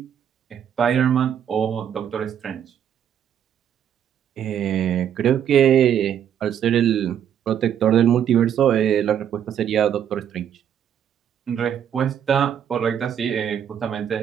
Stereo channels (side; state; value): left; quieter; 9.3 dB